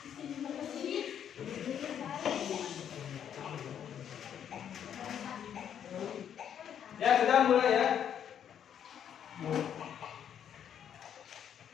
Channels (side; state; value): right; quieter; 9.1 dB